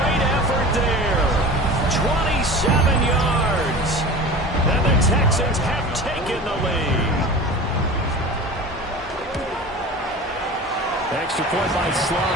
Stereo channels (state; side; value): normal; both; correlation 0.35